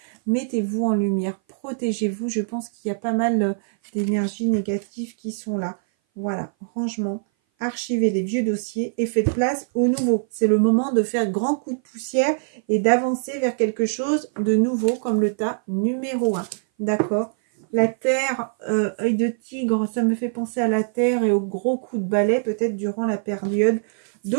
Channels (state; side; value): silent; left; 58 dB below the other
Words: mettez-vous en lumière, protégez-vous. Je pense qu'il y a pas mal d'énergies négatives qui sont là. Voilà, rangement, archivez les vieux dossiers et faites place au nouveau. C'est le moment de faire grand coup de poussière et d'avancer vers quelque chose de nouveau comme le tas numéro 1. D'accord? La terre, œil de tigre, ça me fait penser à la terre et au gros coup de balai peut-être durant la période